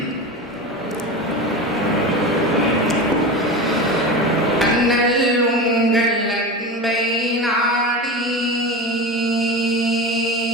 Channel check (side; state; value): both; normal; correlation 0.26